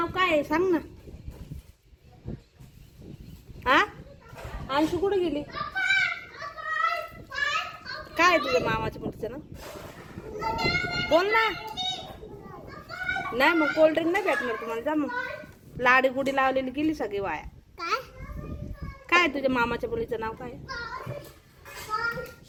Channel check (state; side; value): identical; both; correlation 1.00